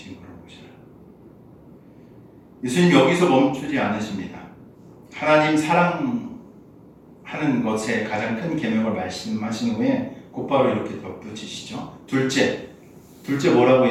오셔라. 예수님 여기서 멈추지 않으십니다. 하나님 사랑하는 것에 가장 큰 계명을 말씀하신 후에 곧바로 이렇게 덧붙이시죠. 둘째 뭐라고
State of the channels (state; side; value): identical; both; correlation 1.00